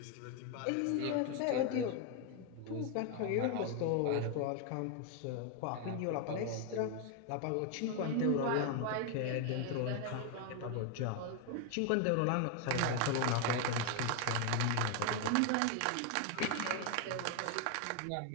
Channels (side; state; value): both; different; correlation 0.01